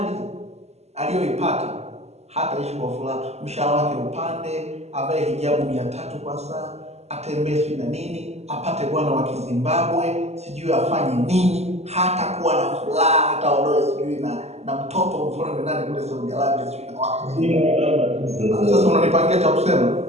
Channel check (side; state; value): left; late; 0.31 ms